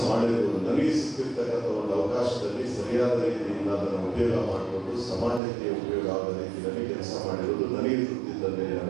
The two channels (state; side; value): drops out; left; at 5.4 s